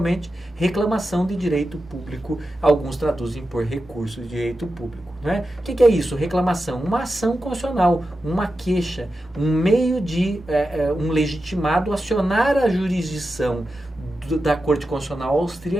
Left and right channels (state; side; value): normal; both; correlation 0.91